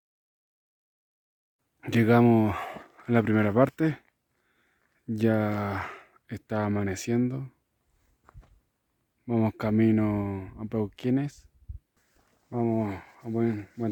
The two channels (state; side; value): identical; both; correlation 1.00